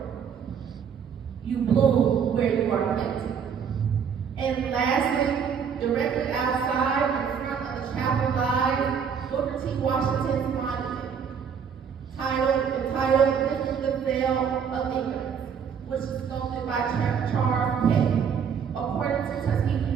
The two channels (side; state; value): left; quieter; 7.1 dB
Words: you bloom where you are planted. And lastly, directly outside in front of the chapel lies Booker T. Washington's monument, entitled Lifting the Veil of Ignorance, which is sculpted by Charles K. According to